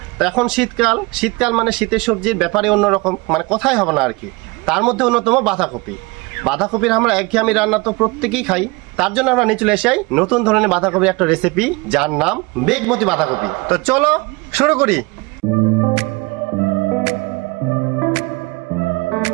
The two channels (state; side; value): quieter; left; 25.3 dB